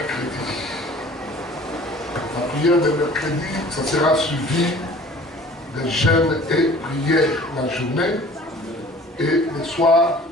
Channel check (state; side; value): normal; both; correlation 0.48